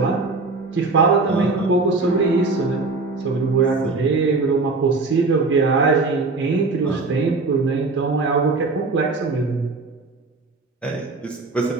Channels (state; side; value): quieter; left; 3.8 dB